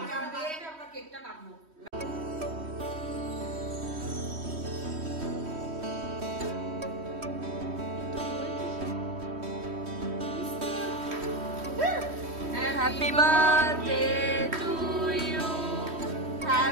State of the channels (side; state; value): left; late; 3.1 ms